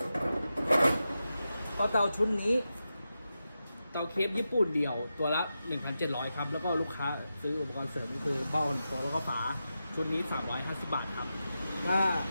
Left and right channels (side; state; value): both; inverted; correlation -0.90